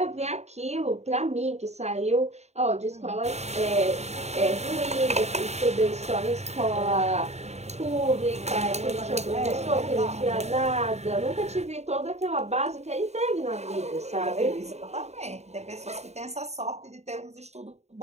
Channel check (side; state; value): left; late; 0.32 ms